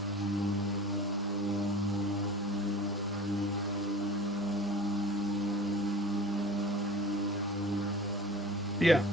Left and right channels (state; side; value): normal; both; correlation 0.40